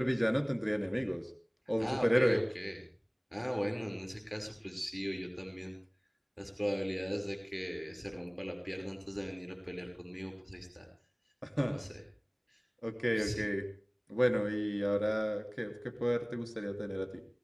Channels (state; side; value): identical; both; correlation 1.00